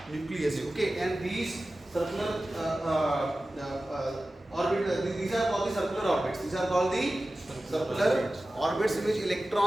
nucleus. Okay, and these circular orbit, these are called the circular orbits. These are called the circular orbits in which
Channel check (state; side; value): normal; both; correlation 0.95